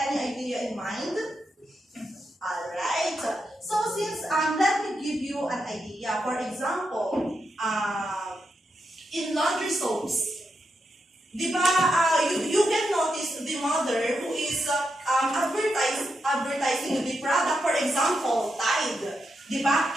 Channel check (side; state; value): both; normal; correlation 0.85